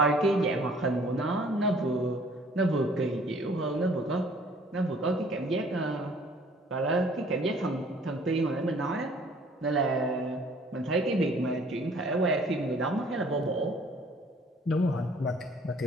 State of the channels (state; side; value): normal; both; correlation 0.56